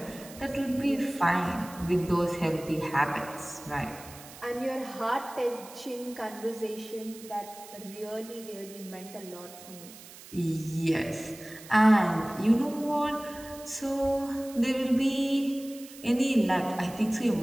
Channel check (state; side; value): noise; right; hiss, 17 dB below the sound